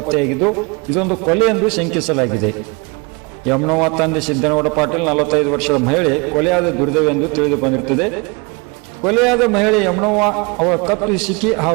ಇದೊಂದು ಕೊಲೆ ಎಂದು ಶಂಕಿಸಲಾಗಿದೆ. ಯಮನೋವ ತಂದೆ ಸಿದ್ದನಗೌಡ ಪಾಟೀಲ್ 45 ವರ್ಷದ ಮಹಿಳೆ ಕೊಲೆಯಾದ ದುರ್ದೈವವೆಂದು ತಿಳಿದು ಬಂದಿರುತ್ತದೆ. ಕೊಲೆಯಾದ ಮಹಿಳೆ ಯಮನೋವ ಅವರ ಕತ್ತು ಹಿಸುಕಿ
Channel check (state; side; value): quieter; left; 29.6 dB